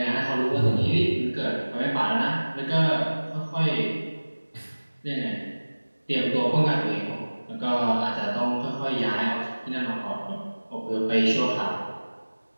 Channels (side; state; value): both; inverted; correlation -1.00